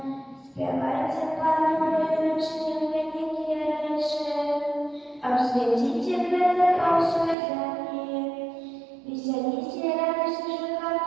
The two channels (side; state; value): left; drops out; at 7.4 s